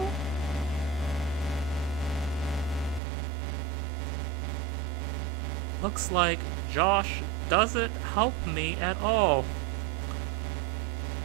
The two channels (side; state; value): left; drops out; at 3.0 s